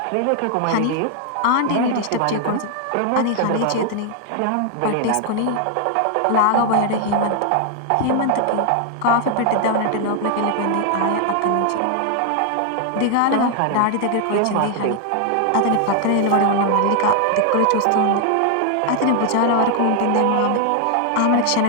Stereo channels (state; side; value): different; both; correlation 0.00